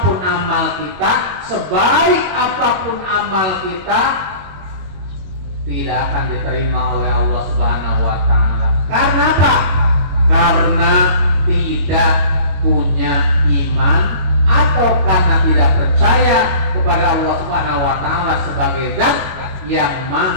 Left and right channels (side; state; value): left; late; 22 ms